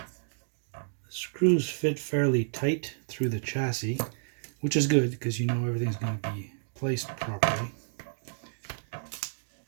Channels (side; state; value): left; silent; digital silence